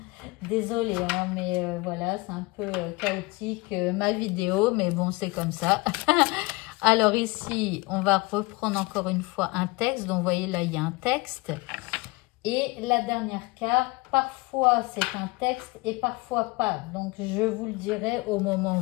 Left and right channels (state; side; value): quieter; right; 23.4 dB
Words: Désolée, hein, mais voilà, c'est un peu chaotique ma vidéo, mais bon, c'est comme ça. Alors ici, on va reprendre encore une fois un texte. Donc, vous voyez, là, il y a un texte. Et la dernière carte, parfois c'est un texte et parfois pas. Donc, je vous le dirai au moment